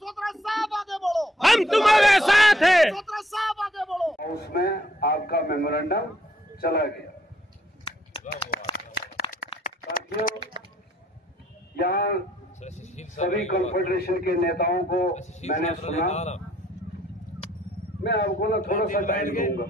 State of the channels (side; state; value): both; normal; correlation 0.67